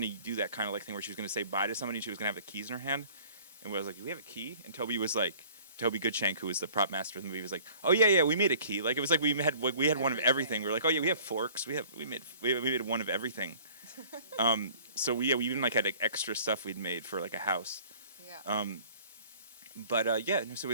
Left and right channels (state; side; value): inverted; both; correlation -0.51